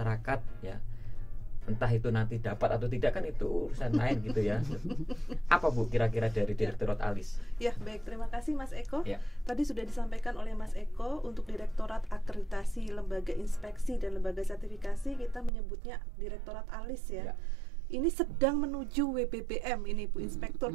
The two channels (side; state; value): left; drops out; at 15.5 s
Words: ya, entah itu nanti dapat atau tidak kan itu urusan lain gitu ya. Apa Bu kira-kira dari Direktorat ALIS? Ya, baik, terima kasih Mas Eko. Tadi sudah disampaikan oleh Mas Eko, untuk Direktorat Akreditasi Lembaga Inspeksi dan Lembaga Sertifikasi kita menyebutnya Direktorat ALIS ya. Ini sedang menuju WBBM ini Bu Inspektur